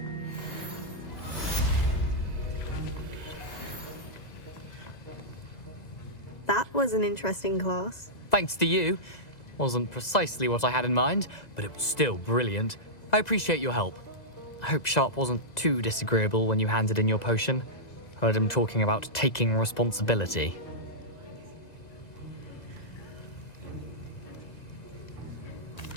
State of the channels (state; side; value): late; right; 2.0 ms